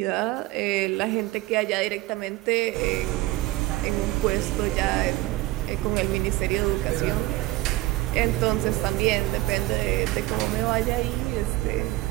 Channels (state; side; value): quieter; left; 18.4 dB